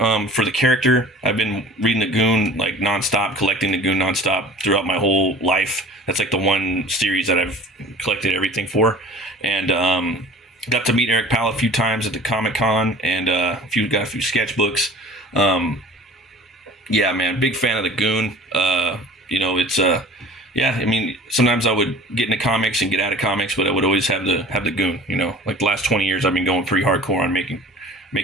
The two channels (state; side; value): normal; both; correlation 0.45